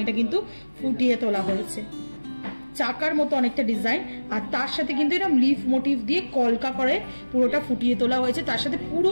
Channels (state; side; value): inverted; both; correlation -1.00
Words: কিন্তু ফুটিয়ে তোলা হয়েছে, চাকার মতো অনেকটা ডিজাইন, আর তার সাথে কিন্তু এরকম লিফ মোটিভ দিয়ে কলকা করে পুরোটা ফুটিয়ে তোলা হয়েছে। তার সাথে পুরো